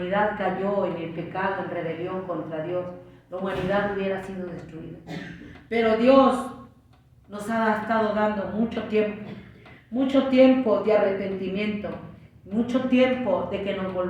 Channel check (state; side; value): identical; both; correlation 1.00